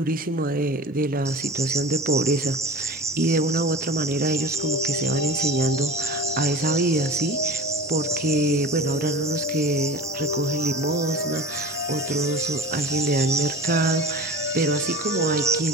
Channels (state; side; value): normal; both; correlation 0.36